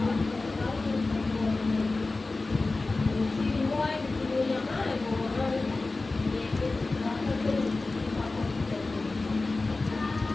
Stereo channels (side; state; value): right; quieter; 3.4 dB